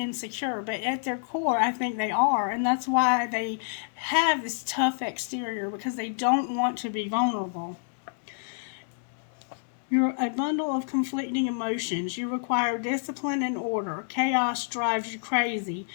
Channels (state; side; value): silent; right; 59 dB below the other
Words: but at their core, I think they are, and that's why they have this tough exterior, because they don't want to be vulnerable. You're a bundle of conflicting emotions. You require discipline and order. Chaos drives you crazy